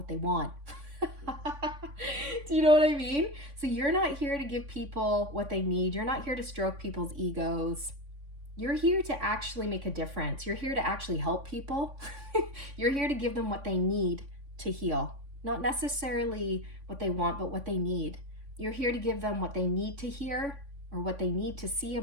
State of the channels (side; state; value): left; late; 3.5 ms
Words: they want. Do you know what I mean? So you're not here to give people what they need. You're not here to stroke people's egos. You're here to actually make a difference. You're here to actually help people. You're here to give them what they need to heal. Not necessarily what they want, but what they need. You're here to give them what they need to hear, or what they need to see